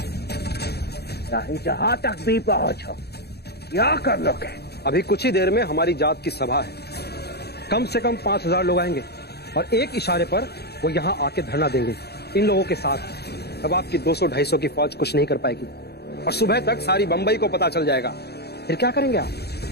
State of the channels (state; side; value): late; right; 0.47 ms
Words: चाहे जहां तक भी पहुंचो, क्या कर लोगे? अभी कुछ ही देर में हमारी जात की सभा है। कम से कम 5000 लोग आएंगे और एक इशारे पर वो यहाँ आके धरना देंगे इन लोगों के साथ। अब आपकी 200-250 की फौज कुछ नहीं कर पाएगी और सुबह तक सारी बंबई को पता चल जाएगा। फिर क्या करेंगे आप?